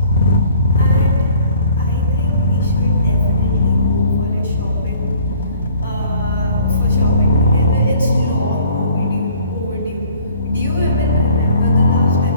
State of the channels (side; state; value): both; inverted; correlation -0.55